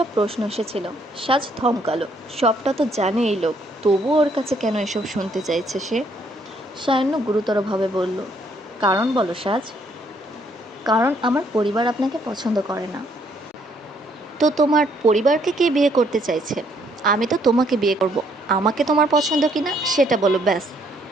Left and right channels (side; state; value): both; normal; correlation 0.68